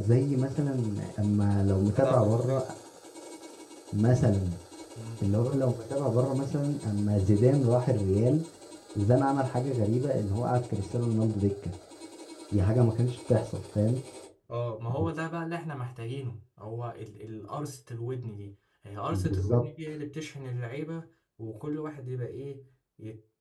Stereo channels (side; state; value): both; identical; correlation 1.00